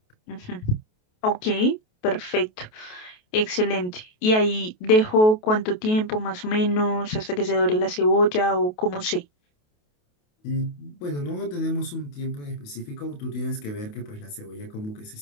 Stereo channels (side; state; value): right; late; 28 ms